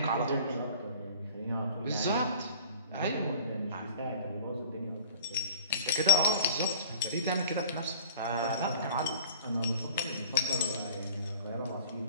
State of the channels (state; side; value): inverted; both; correlation -0.42